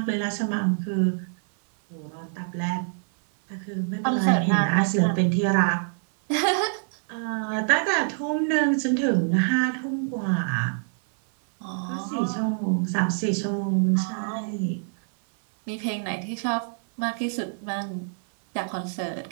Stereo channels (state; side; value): silent; left; 59 dB below the other